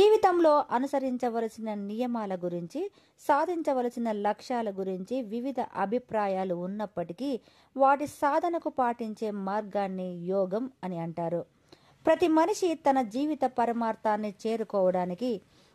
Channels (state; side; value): identical; both; correlation 1.00